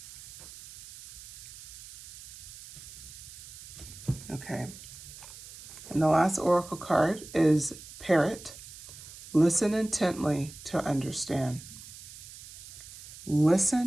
Okay. And the last oracle card is Parrot. Listen intently to understand.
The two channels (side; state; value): right; noise; hiss, 16 dB below the sound